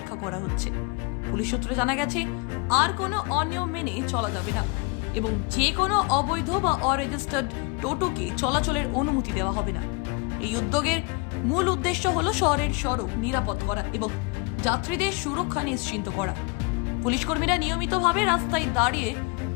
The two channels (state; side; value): quieter; right; 30.0 dB